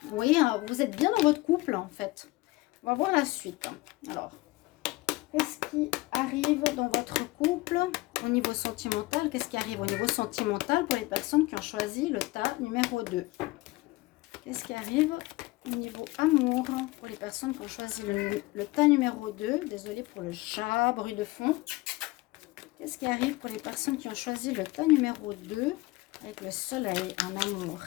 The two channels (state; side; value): quieter; right; 21.2 dB